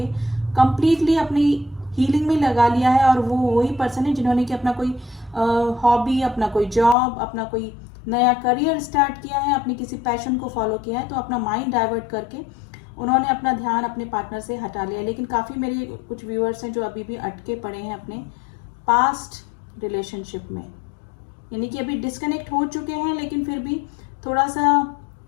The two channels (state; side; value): drops out; right; at 7.0 s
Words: कंप्लीटली अपनी हीलिंग में लगा लिया है, और वो वही पर्सन है जिन्होंने कि अपना कोई हॉबी, अपना कोई जॉब, अपना कोई नया करियर स्टार्ट किया है, अपनी किसी पैशन को फॉलो किया है, तो अपना माइंड डाइवर्ट करके उन्होंने अपना ध्यान अपने पार्टनर से हटा लिया। लेकिन काफ़ी मेरे कुछ व्यूअर्स हैं जो अभी भी अटके पड़े हैं अपने पास्ट रिलेशनशिप में, यानी कि अभी डिस्कनेक्ट हो चुके हैं, लेकिन फिर भी थोड़ा सा